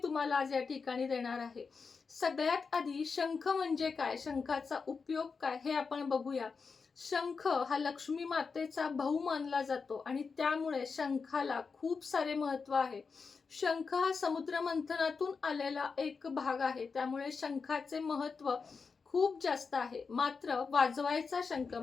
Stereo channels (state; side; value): quieter; right; 5.1 dB